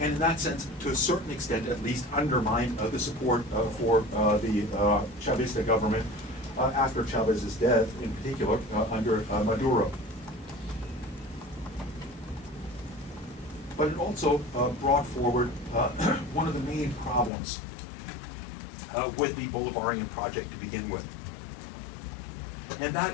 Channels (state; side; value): drops out; right; at 17.3 s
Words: And in that sense, to a certain extent at least, undermined the support for the Chavista government after Chavez's death, in particular under Maduro. But it also brought forward one of the main problems with the Bolivarian project to begin with. And